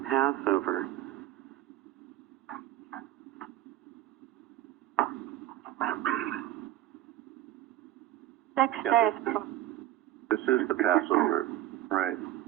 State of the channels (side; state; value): left; quieter; 13.6 dB